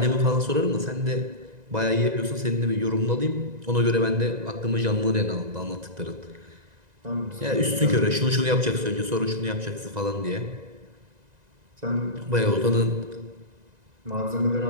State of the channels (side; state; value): left; late; 1.9 ms